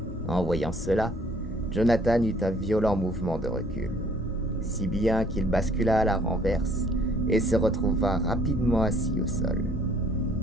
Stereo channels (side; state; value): both; normal; correlation 0.59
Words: En voyant cela, Jonathan eut un violent mouvement de recul, si bien qu'il bascula à la renverse et se retrouva rapidement assis au sol.